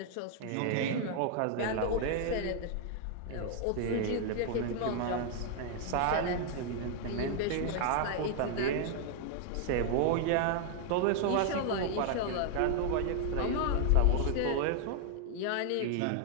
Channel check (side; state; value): both; different; correlation 0.00